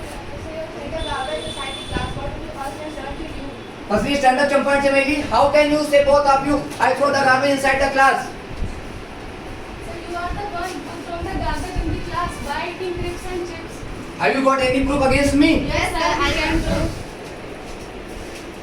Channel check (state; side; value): identical; both; correlation 1.00